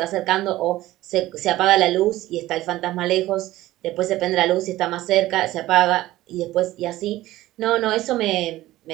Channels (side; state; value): left; quieter; 16.2 dB